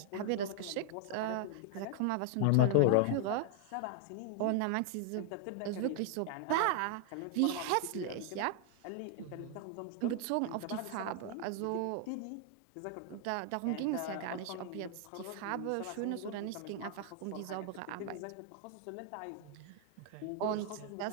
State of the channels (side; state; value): both; different; correlation 0.00